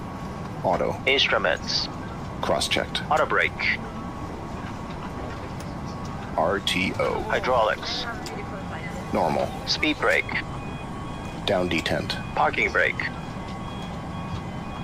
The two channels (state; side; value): identical; both; correlation 1.00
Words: Auto. Instruments. Cross-checked. Auto brake. RTO. Hydraulics. Normal. Speed brake. Down detent. Parking brake.